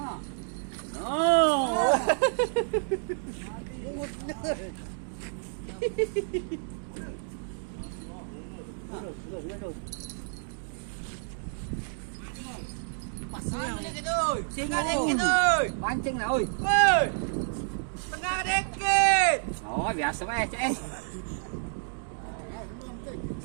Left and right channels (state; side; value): silent; left; digital silence